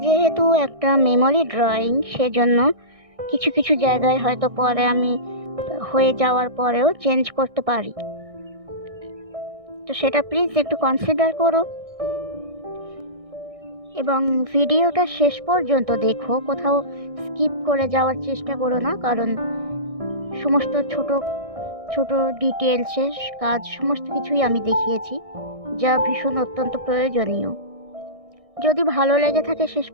যেহেতু একটা মেমোরি ড্রয়িং, সেজন্য কিছু কিছু জায়গায় হয়তো পরে আমি হয়ে যাওয়ার পরেও চেঞ্জ করতে পারি। তো সেটা প্লিজ একটু কনসিডার করো এবং ভিডিওটা শেষ পর্যন্ত দেখো, কোথাও স্কিপ করে যাওয়ার চেষ্টা করো না, কারণ সমস্ত ছোট ছোট ডিটেলসের কাজ সমস্ত কিছুই আমি দেখিয়েছি, যা ভীষণ অত্যন্ত প্রয়োজনীয়। যদি ভালো লেগে থাকে শেষ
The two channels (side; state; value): left; late; 1.6 ms